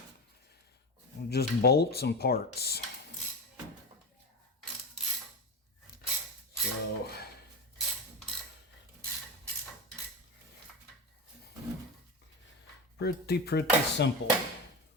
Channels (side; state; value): both; normal; correlation 0.22